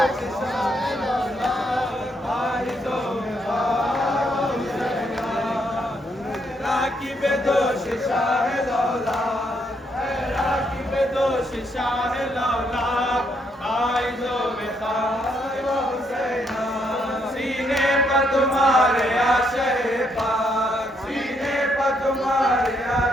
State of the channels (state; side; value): normal; both; correlation 0.74